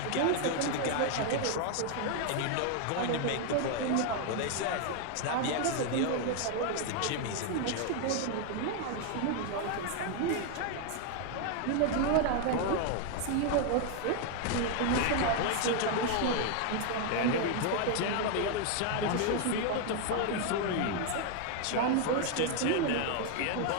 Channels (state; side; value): different; both; correlation 0.01